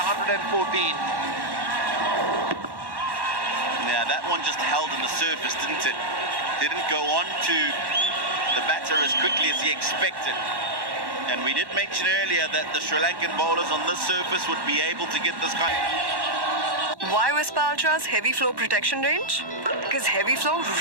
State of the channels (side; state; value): left; late; 1.1 ms